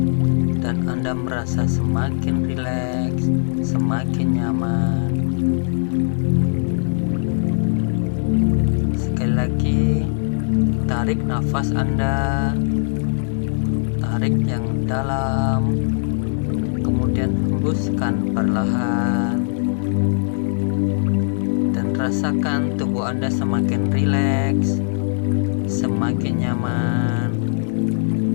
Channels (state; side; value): silent; right; digital silence